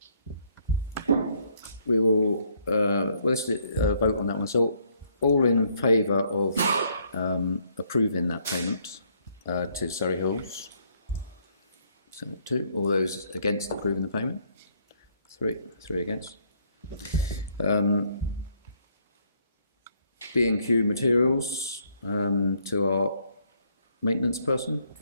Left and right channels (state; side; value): inverted; both; correlation -0.68